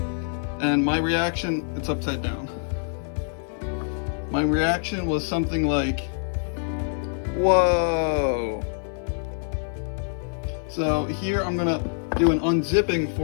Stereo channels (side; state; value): right; silent; digital silence